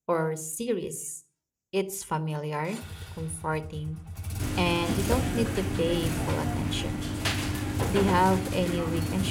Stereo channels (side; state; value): both; identical; correlation 1.00